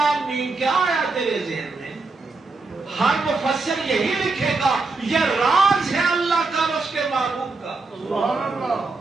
میم کیا آیا تیرے ذہن میں؟ ہر مفسر یہی لکھے گا یہ راز ہے اللہ کا اور اس کے محبوب کا،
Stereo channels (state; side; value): quieter; left; 3.7 dB